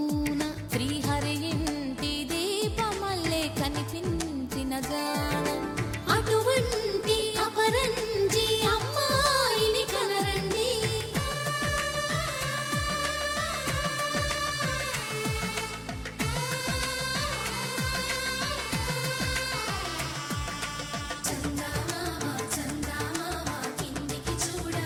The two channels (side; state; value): both; identical; correlation 1.00